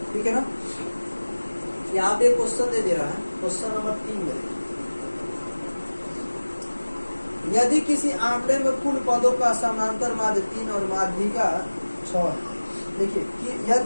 ठीक है ना। यहाँ पे क्वेश्चन दे रहा है, क्वेश्चन नंबर 3 में यदि किसी आंकड़े में कुल पदों का समांतर माध्य 3 और माध्यिका 6 है। देखिए कि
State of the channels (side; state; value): both; inverted; correlation -1.00